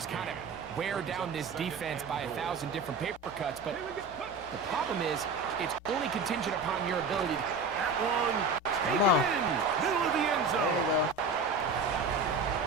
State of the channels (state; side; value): quieter; left; 3.9 dB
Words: kind of wear down this defense by 1,000 different paper cuts. But the problem is, it's only contingent upon your ability. That one, Come on. middle of the end There you zone. go.